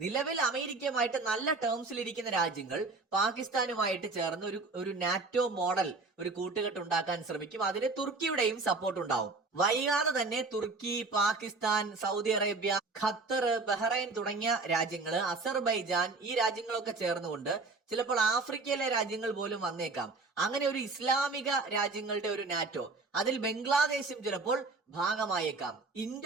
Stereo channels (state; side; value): quieter; left; 3.7 dB